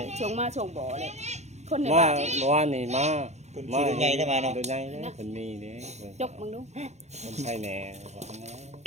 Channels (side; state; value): left; late; 0.33 ms